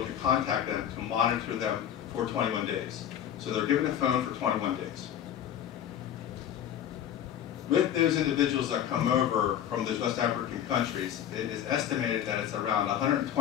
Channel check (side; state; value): right; quieter; 10.2 dB